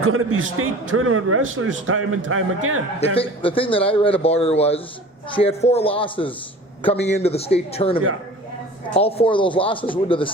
to be state tournament wrestlers time and time again. The thing that I read about her was she had 4 losses coming into the state tournament. Yeah. All 4 of those losses went to the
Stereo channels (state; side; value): normal; both; correlation 0.42